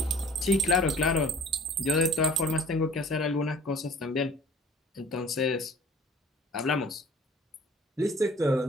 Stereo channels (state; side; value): normal; both; correlation 0.49